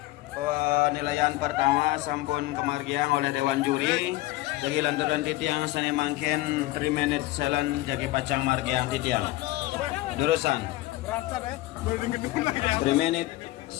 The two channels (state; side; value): quieter; right; 18.2 dB